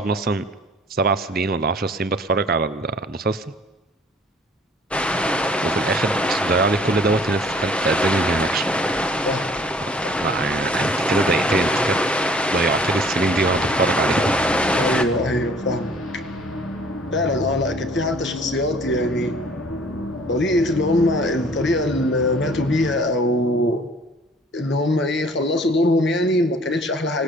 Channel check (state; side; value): normal; both; correlation 0.54